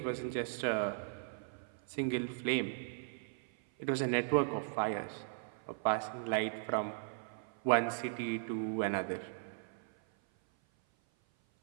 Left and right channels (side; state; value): left; silent; 53 dB below the other